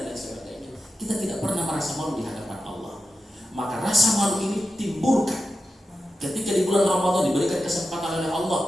lain sebagainya. Kita tidak pernah merasa malu di hadapan Allah. Maka rasa malu ini timbulkan ketika di bulan Ramadan diberikan kesempatan oleh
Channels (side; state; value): both; normal; correlation 0.92